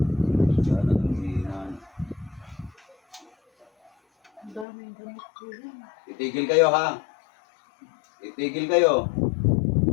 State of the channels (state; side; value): drops out; right; at 4.7 s